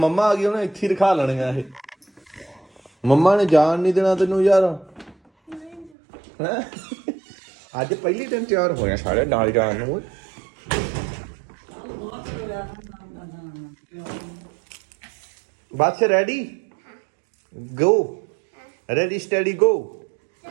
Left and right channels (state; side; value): drops out; left; at 5.9 s